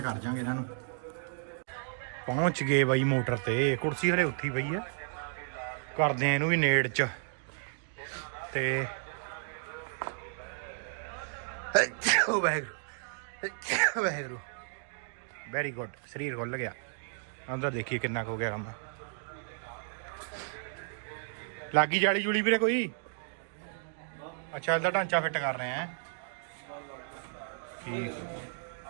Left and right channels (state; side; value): silent; left; digital silence